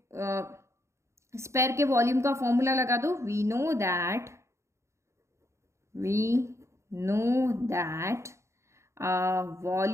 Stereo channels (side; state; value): left; late; 0.14 ms